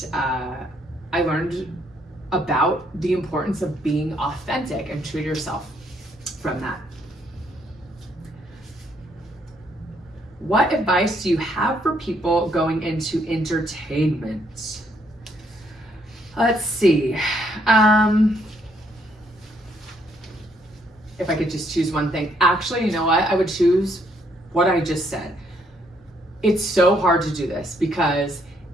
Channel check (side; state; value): both; normal; correlation 0.70